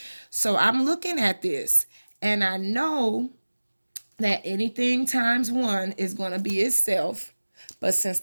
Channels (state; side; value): inverted; both; correlation -1.00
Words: So I'm looking at this, and I know that anything times 1 is going to be itself. But since